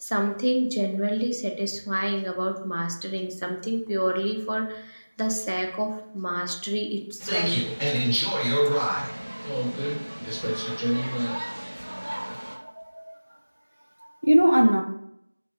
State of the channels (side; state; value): both; inverted; correlation -1.00